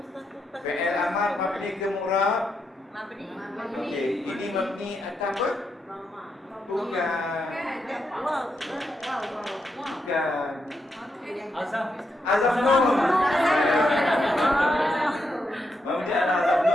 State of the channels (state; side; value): normal; both; correlation 0.83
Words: Fi'il amar mabni ke mu'rab? Okey, ini mabni atas apa? Bukan. Azam nun. Mabni ala azam